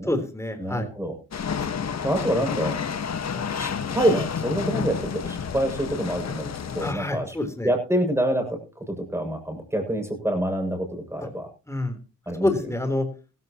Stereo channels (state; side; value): normal; both; correlation 0.63